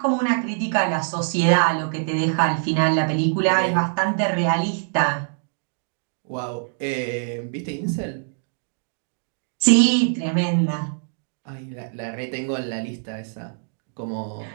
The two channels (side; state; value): left; silent; digital silence